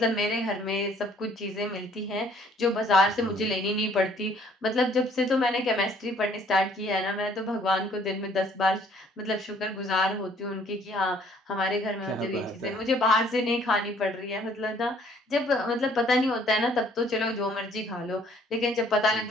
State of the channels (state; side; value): normal; both; correlation 0.60